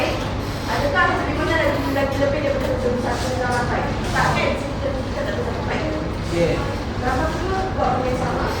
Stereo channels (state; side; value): identical; both; correlation 1.00